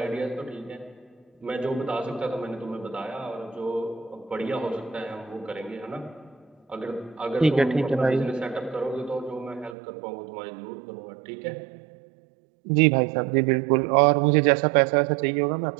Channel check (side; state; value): left; drops out; at 9.8 s